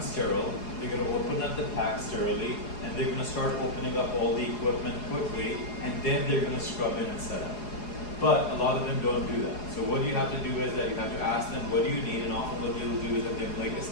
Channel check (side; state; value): right; late; 4.8 ms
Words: They're going to open up the pack sterilely, and they're going to start opening up all the equipment quickly, and then they're going to scrub in and set up. But a lot of them don't do that. So what you have to do is that you have to ask them, what do you need? And often what they will do is that they make a